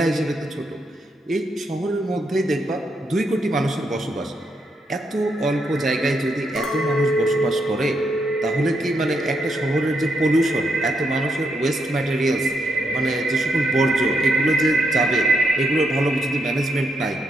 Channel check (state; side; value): normal; both; correlation 0.79